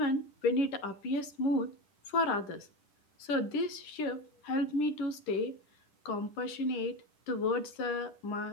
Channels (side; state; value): right; late; 10 ms